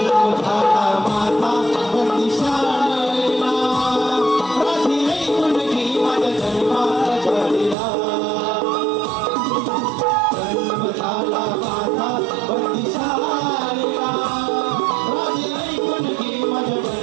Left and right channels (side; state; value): left; drops out; at 7.8 s